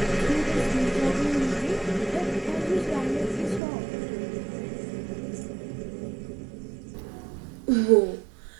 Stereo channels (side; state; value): left; drops out; at 3.6 s